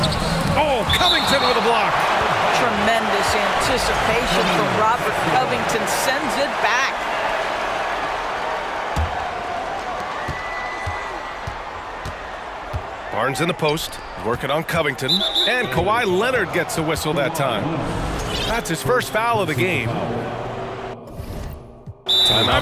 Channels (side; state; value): both; identical; correlation 1.00